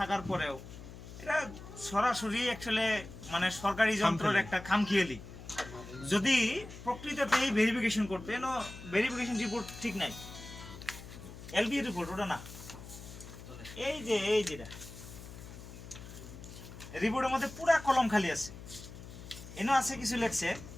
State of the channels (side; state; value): left; noise; hum, 14 dB below the sound